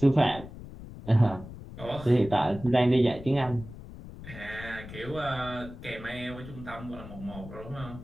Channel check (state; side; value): noise; left; rumble, 14 dB below the sound